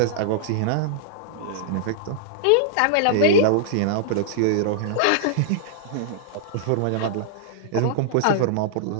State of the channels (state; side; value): different; both; correlation -0.01